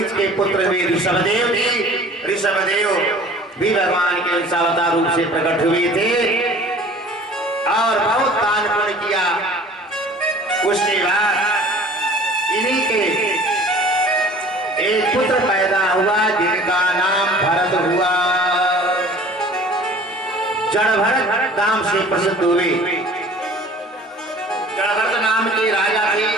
के पुत्र हुए ऋषभदेव जी। ऋषभदेव भी भगवान के अवतार रूप से प्रकट हुए थे और बहुत दान पुण्य किया। उसके बाद इन्हीं के एक पुत्र पैदा हुआ जिनका नाम भरत हुआ। जड़भरत नाम से प्रसिद्ध हुए। जड़भरत नाम के राजा थे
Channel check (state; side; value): normal; both; correlation 0.47